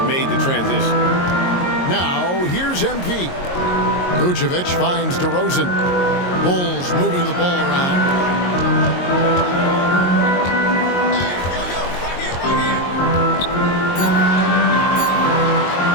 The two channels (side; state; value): right; late; 22 ms